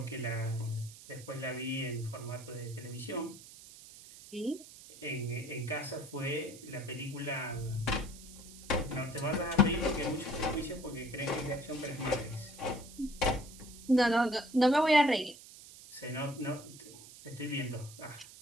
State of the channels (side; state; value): right; noise; hiss, 17 dB below the sound